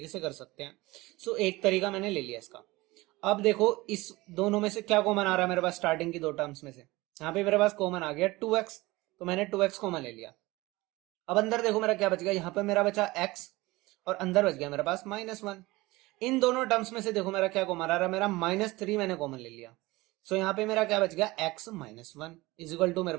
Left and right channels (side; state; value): left; quieter; 20.8 dB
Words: से कर सकते हैं। सो एक तरीका मैंने ले लिया इसका। अब देखो इस दोनों में से क्या कॉमन आ रहा है मेरे पास, स्टार्टिंग की दो टर्म्स में से यहाँ पे मेरे पास कॉमन आ गया 2x, तो मैंने 2x कॉमन ले लिया। अब अंदर देखो मेरा क्या बच गया, यहाँ पे मेरा बचा x और अंदर बच गया मेरे पास -1। इन दोनों टर्म्स में से देखो मेरा क्या कॉमन आ रहा है, मेरा -3 मैंने कॉमन ले लिया। सो यहाँ पे मेरा क्या बच गया, x -1 इक्वल टू मेरे